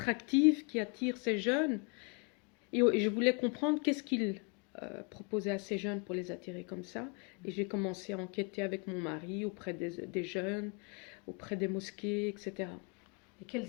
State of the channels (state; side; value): quieter; right; 35.9 dB